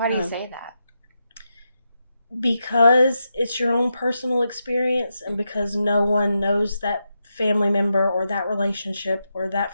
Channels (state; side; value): inverted; both; correlation -0.85